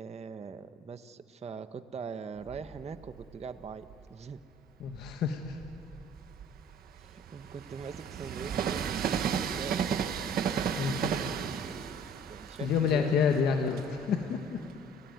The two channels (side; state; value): both; normal; correlation 0.51